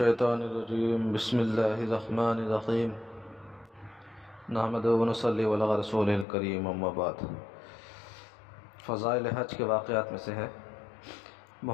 الرجیم بسم اللہ الرحمن الرحیم نحمدہ و نصلی علی رسول الکریم اما بعد۔ فضائل حج کے واقعات میں سے ہے،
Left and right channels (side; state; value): right; drops out; at 6.2 s